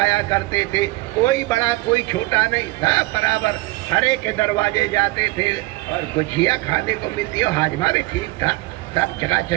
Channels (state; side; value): quieter; left; 20.9 dB